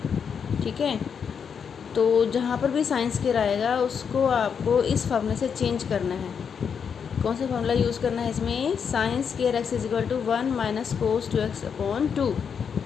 ठीक है, तो जहाँ पर भी साइन स्क्वायर आएगा उसको आपको इस फार्मूले से चेंज करना है। कौन सा फार्मूला यूज़ करना है इसमें? Sine square x = 1 - cos 2x/2।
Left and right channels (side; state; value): right; quieter; 6.9 dB